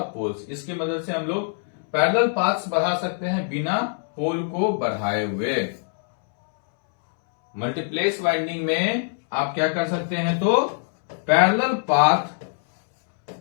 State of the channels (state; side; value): silent; right; 63 dB below the other